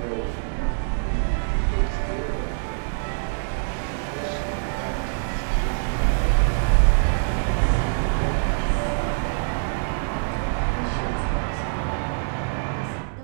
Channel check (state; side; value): silent; left; 62 dB below the other